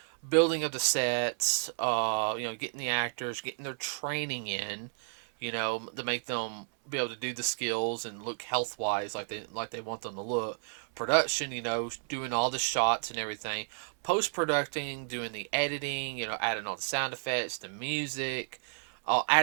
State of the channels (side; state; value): left; silent; 57 dB below the other